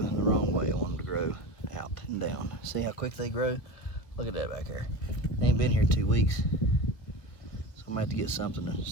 wrong way. I want them to grow out and down. See how quick they grow? Look at that back there. They ain't been here 2 weeks. So I'm gonna have to get something to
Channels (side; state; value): right; late; 1.9 ms